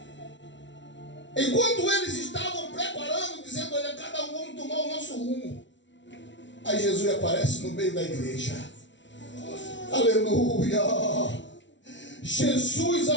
Enquanto eles estavam preparando, dizendo: olha, cada um vamos tomar o nosso rumo. Aí Jesus aparece no meio da igreja. Aleluia! Jesus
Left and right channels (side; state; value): right; late; 0.54 ms